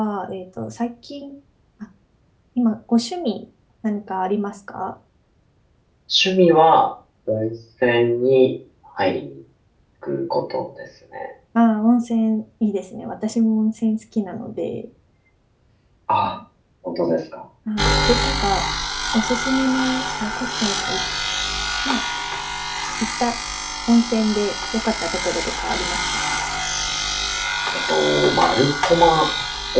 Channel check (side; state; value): both; identical; correlation 1.00